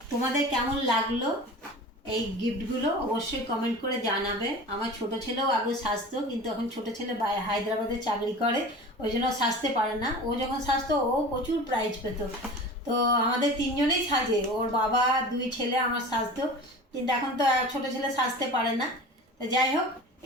তোমাদের কেমন লাগলো এই গিফটগুলো অবশ্যই কমেন্ট করে জানাবে। আমার ছোট ছেলেও আগে সাজতো, কিন্তু এখন ছোট ছেলে হায়দ্রাবাদে চাকরি করে, ওই জন্য সাজতে পারে না। ও যখন সাজতো ও প্রচুর প্রাইজ পেত। তো আমাদের তিনজনেই সাজে, ওর বাবা, দুই ছেলে, আমার সাজতো। কিন্তু এখন তো ছোট ছেলে সাজতে পারে না। তো যাই হোক,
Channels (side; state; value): both; normal; correlation 0.37